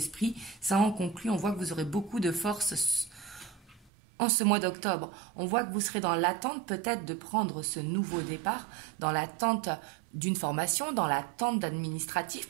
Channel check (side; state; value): left; drops out; at 3.9 s